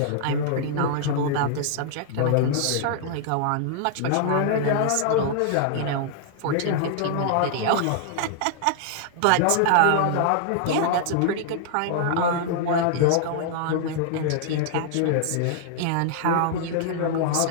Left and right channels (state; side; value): different; both; correlation -0.01